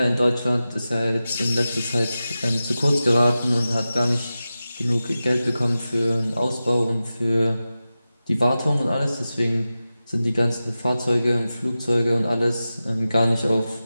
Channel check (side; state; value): both; inverted; correlation -0.94